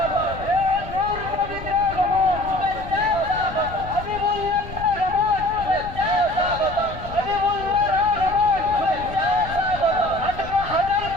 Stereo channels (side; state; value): left; noise; rumble, 12 dB below the sound